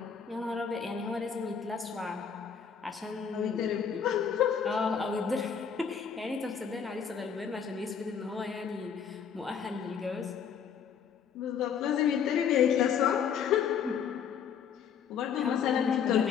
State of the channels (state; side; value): quieter; right; 7.3 dB